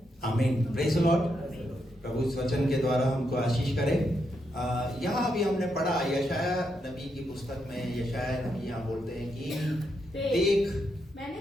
आमीन, प्रेज़ द लॉर्ड। प्रभु इस वचन के द्वारा हमको आशीष करे। यहाँ अभी हमने पढ़ा यशाया नबी की पुस्तक में, यशाया नबी यहाँ बोलते हैं कि देख मैंने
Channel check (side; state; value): both; normal; correlation 0.81